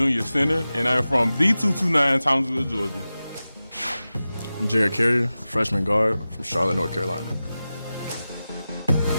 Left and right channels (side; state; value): both; inverted; correlation -0.95